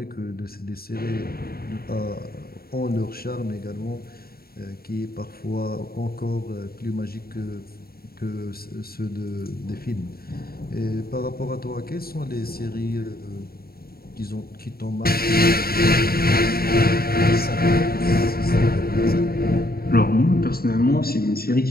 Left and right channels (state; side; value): late; right; 0.44 ms